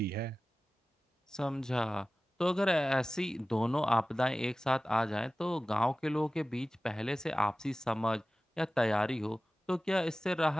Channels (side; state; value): both; normal; correlation 0.96